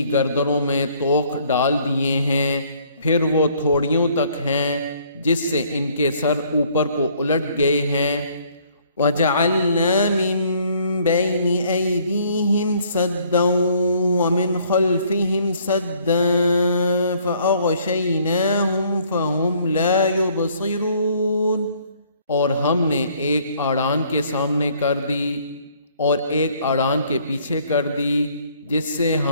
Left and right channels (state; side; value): inverted; both; correlation -0.62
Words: گردنوں میں طوق ڈال دیے ہیں، پھر وہ تھوڑیوں تک ہیں جس سے ان کے سر اوپر کو الٹ گئے ہیں۔ وَجَعَلْنَا مِن بَيْنِ أَيْدِيهِمْ سَدًّا وَمِنْ خَلْفِهِمْ سَدًّا فَأَغْشَيْنَاهُمْ فَهُمْ لَا يُبْصِرُونَ، اور ہم نے ایک اڑان کے سامنے کر دی اور ایک اڑان کے پیچھے کر دی، جس سے